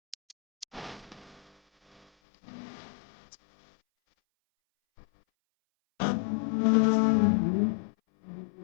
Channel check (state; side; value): drops out; right; at 2.1 s